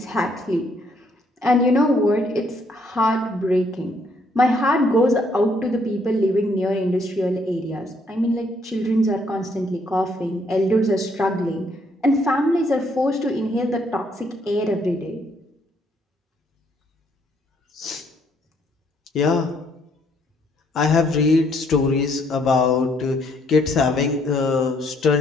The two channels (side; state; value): both; normal; correlation 0.69